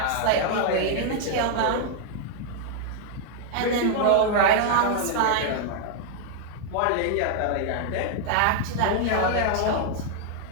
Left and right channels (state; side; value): different; both; correlation 0.00